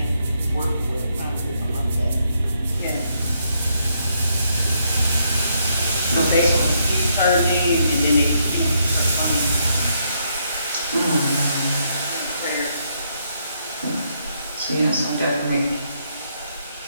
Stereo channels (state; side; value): inverted; both; correlation -0.75